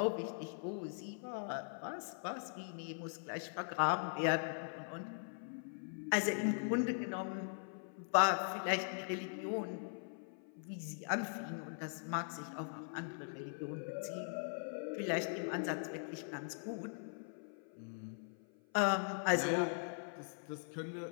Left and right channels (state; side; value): silent; right; 51 dB below the other